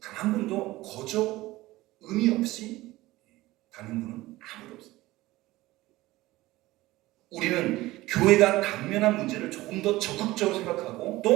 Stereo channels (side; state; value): left; quieter; 18.2 dB